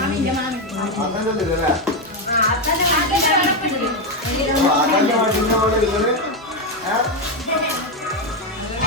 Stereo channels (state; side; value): normal; both; correlation 0.07